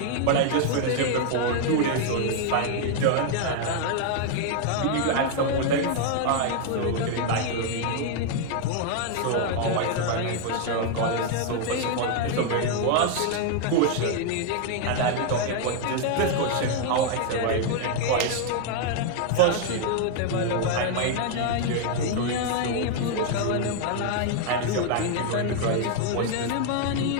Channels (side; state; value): both; different; correlation 0.00